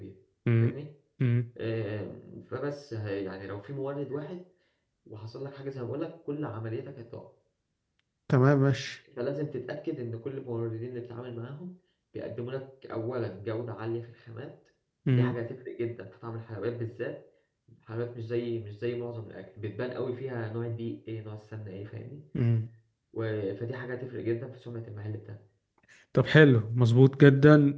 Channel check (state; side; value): identical; both; correlation 1.00